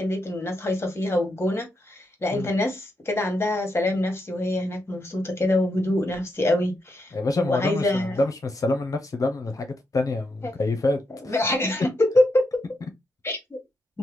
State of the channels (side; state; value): both; normal; correlation 0.83